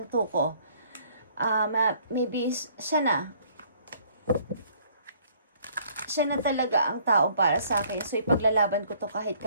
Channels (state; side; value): inverted; both; correlation -0.60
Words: ko, maybe siya na talaga ang tao para sa akin. So, ipaglalaban ko to kahit